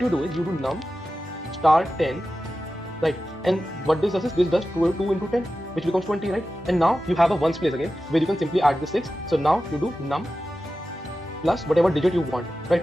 do is, you do num star 10, right? And what this does is, this does 2 into 10, which becomes 20, right? And now you have a ones place again, where you can simply add the 6. So now you do num plus whatever digit you want, right?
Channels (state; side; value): normal; both; correlation 0.93